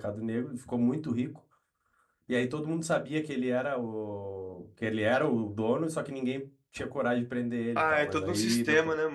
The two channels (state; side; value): identical; both; correlation 1.00